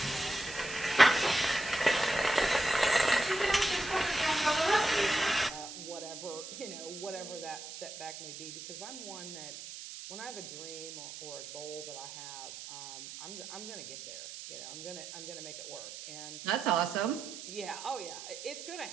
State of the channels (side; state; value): right; noise; hiss, 11 dB below the sound